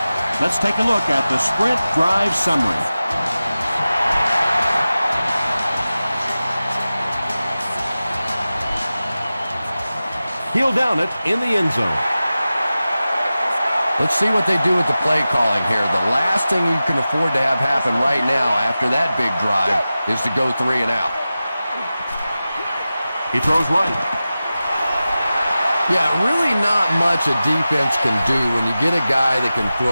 Let's take a look at the sprint drive summary. He'll down it in the end zone. Let's see what they do with the play calling here. The last thing you can afford to have happen right now after that big drive is to go 3 and out. He throws right. Yeah, really not much a defense can do when you get a guy that can throw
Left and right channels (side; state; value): both; inverted; correlation -0.95